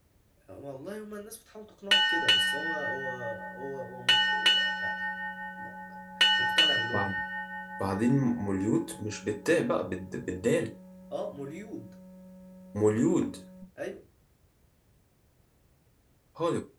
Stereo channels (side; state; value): both; identical; correlation 1.00